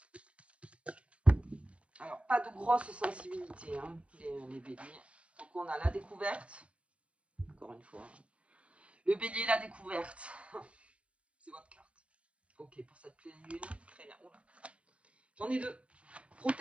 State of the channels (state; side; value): late; left; 0.062 ms